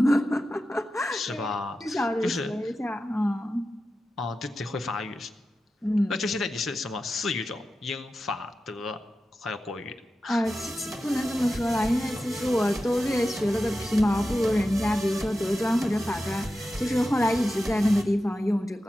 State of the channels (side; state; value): both; normal; correlation 0.92